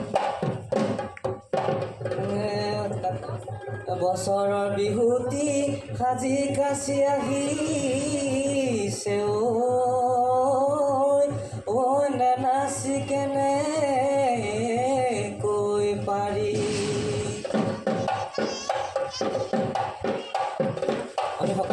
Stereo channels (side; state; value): both; identical; correlation 1.00